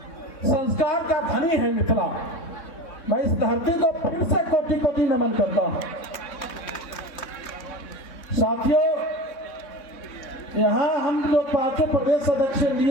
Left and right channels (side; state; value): right; late; 3.6 ms